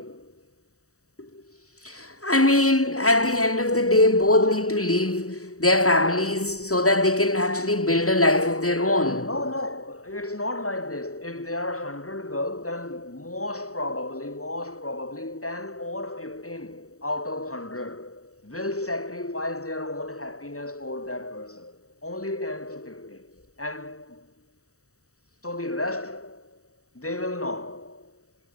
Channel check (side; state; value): right; late; 0.65 ms